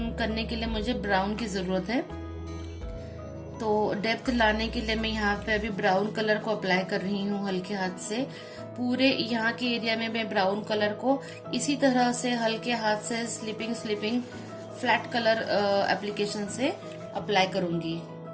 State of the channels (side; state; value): both; identical; correlation 1.00